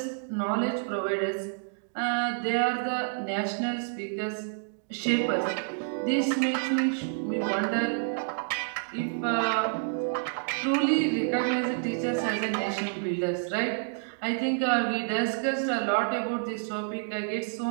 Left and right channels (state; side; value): silent; left; digital silence